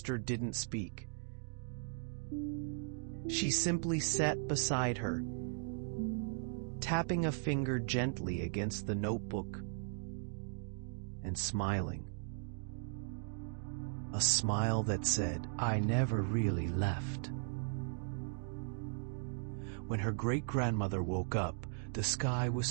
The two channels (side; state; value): left; silent; digital silence